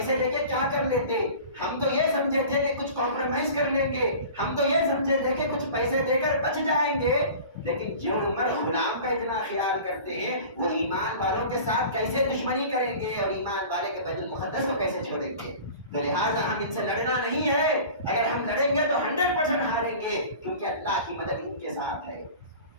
لے کے کیا کر لیتے؟ ہم تو یہ سمجھے تھے کہ کچھ کمپرومائز کر لیں گے، ہم تو یہ سمجھے تھے کہ کچھ پیسے دے کر بچ جائیں گے، لیکن جو عمر غلام کا اتنا خیال کرتے ہیں وہ ایمان والوں کے ساتھ کیسے دشمنی کریں گے اور ایمان والے کے بیت المقدس کو کیسے چھوڑیں گے؟ تو لہٰذا ہم ان سے لڑنا نہیں ہے، اگر ہم لڑیں گے تو 100% ہاریں گے، کیونکہ اللہ کی مدد ان کے ساتھ ہے۔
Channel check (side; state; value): both; inverted; correlation -0.40